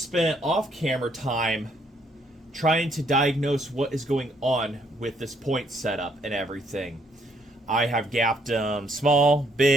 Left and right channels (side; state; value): both; normal; correlation 0.70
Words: off-camera time trying to diagnose what is going on with this point setup and everything. I have gapped them small,